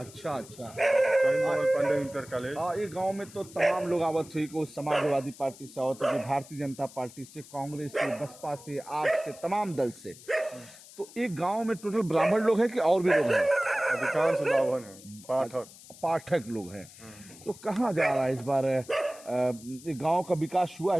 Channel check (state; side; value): noise; left; hiss, 20 dB below the sound